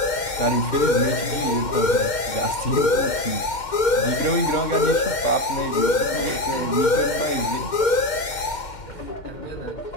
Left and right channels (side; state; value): right; late; 2.1 ms